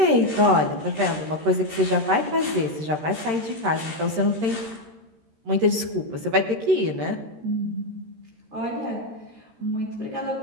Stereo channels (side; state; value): left; late; 13 ms